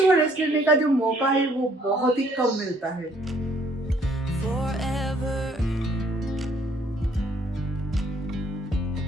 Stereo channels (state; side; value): normal; both; correlation 0.64